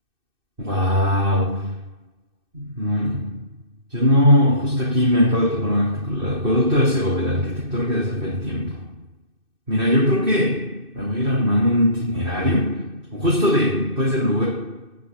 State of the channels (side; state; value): left; late; 2.6 ms